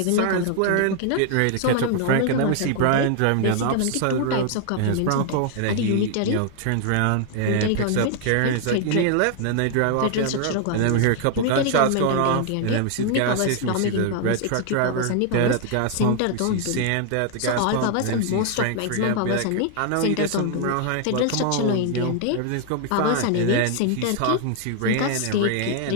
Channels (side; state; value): both; different; correlation 0.00